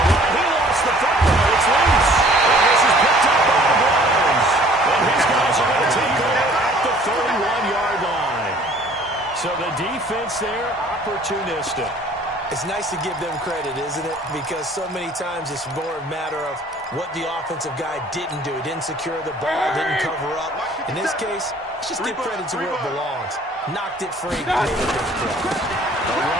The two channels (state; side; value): normal; both; correlation 0.54